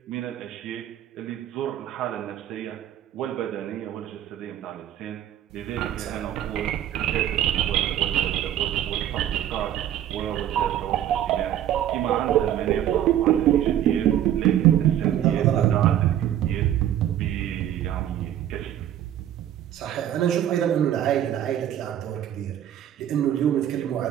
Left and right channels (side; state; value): left; quieter; 11.2 dB